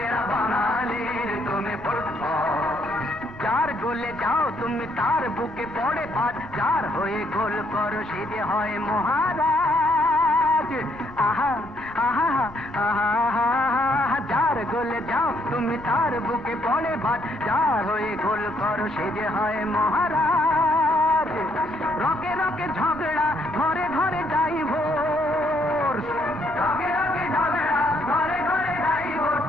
বাঙালির তুমি ফুটবল। যার গোলে যাও তুমি তার বুকে পড়ে ভাত, যার হয়ে গোল করো সে যে হয় মহারাজ। আহা আহা আহা আহা, যার গোলে যাও তুমি তার বুকে পড়ে ভাত, যার হয়ে গোল করো সে যে হয় মহারাজ। রকে রকে ঝগড়া ঘরে ঘরে ডাইভোর্স, রকে রকে ঝগড়া ঘরে ঘরে ডাইভোর্স,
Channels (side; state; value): left; noise; rumble, 20 dB below the sound